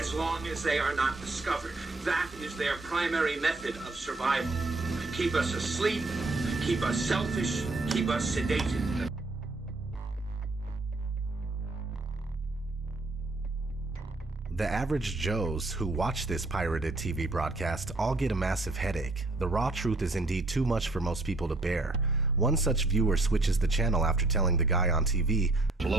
long as they are not discovered. That is their primary method of survival. Keep us asleep, keep us selfish, keep us sedated. The average Joes who watch this pirated TV broadcast all get a massive headache. The raw truth is indeed too much for most people to bear. One such viewer switches the channel after telling the guy on TV,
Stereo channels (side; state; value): left; quieter; 3.0 dB